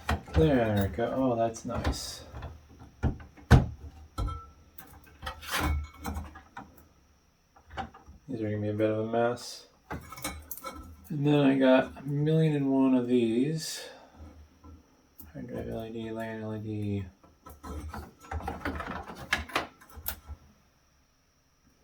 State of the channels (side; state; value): both; identical; correlation 1.00